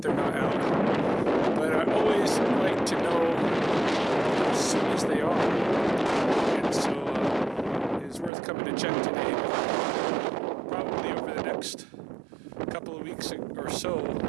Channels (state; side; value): drops out; left; at 8.3 s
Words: they're not out. But I always like to know as soon as they are. And so it's worth coming to check today. Probably over the next couple of weeks or so,